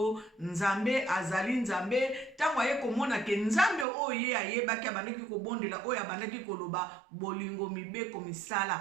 nzambe azali nzambe. Tango aye komona ke nzambe oye ayebaki abandaki kobondela oyo abandaki koloba bolingo mibeko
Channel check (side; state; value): left; drops out; at 3.9 s